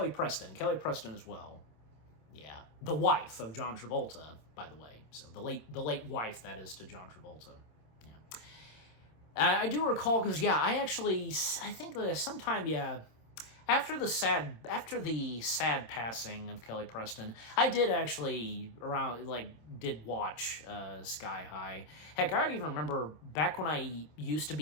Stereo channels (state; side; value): late; right; 26 ms